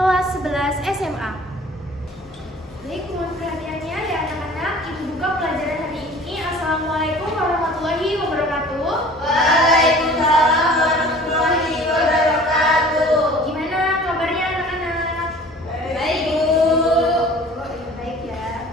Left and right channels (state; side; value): normal; both; correlation 0.46